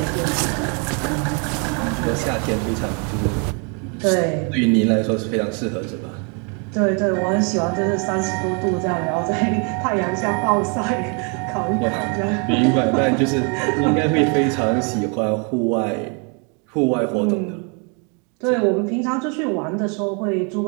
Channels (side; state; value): left; quieter; 36.0 dB